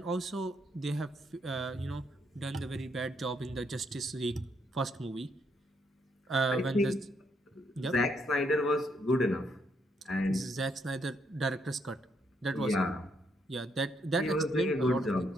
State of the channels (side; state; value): both; normal; correlation 0.75